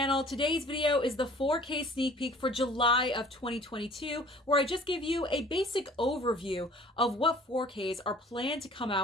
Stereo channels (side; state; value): both; normal; correlation 0.50